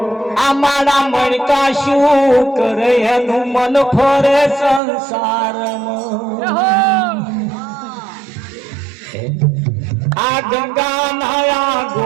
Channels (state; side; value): drops out; left; at 4.8 s